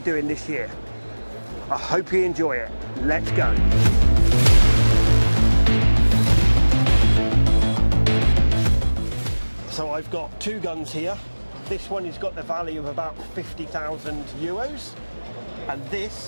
this year. I hope you enjoy it. Let's go. So I've got two guns here. This one has got the value of about 50,000 euros, and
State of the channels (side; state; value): both; inverted; correlation -1.00